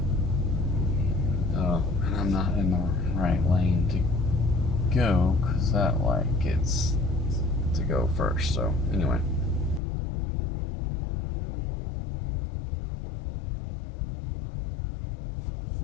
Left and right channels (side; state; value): right; drops out; at 9.8 s